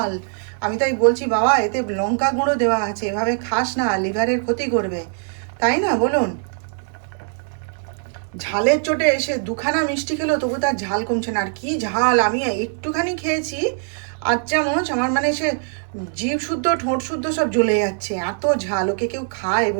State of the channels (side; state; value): left; silent; 56 dB below the other